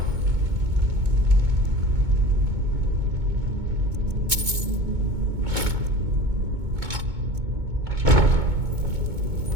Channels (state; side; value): late; left; 2.2 ms